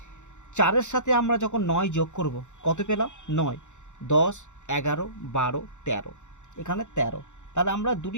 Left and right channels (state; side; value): late; right; 0.84 ms